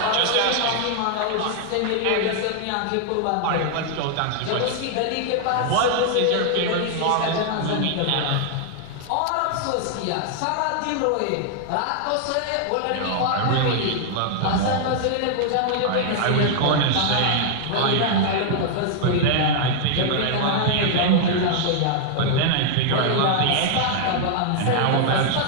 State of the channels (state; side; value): different; both; correlation 0.00